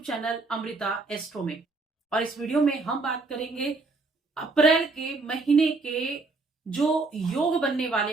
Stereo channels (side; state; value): left; quieter; 3.6 dB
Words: चैनल अमृता एस्ट्रो में। और इस वीडियो में हम बात करेंगे अप्रैल के महीने के जो योग बनने